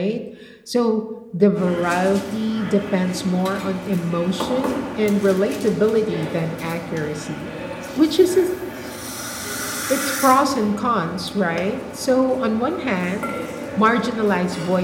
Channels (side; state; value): both; identical; correlation 1.00